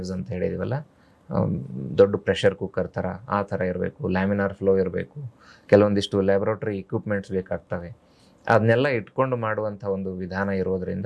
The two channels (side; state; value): both; identical; correlation 1.00